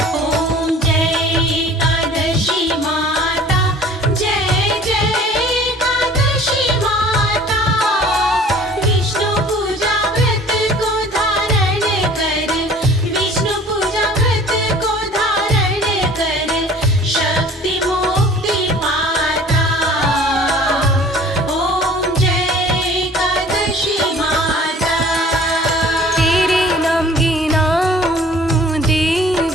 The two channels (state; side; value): normal; both; correlation 0.49